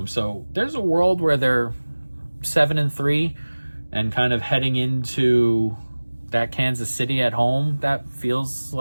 So there's a world where they're 7-3 and kind of heading into that Kansas City at home. That feels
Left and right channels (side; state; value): both; inverted; correlation -1.00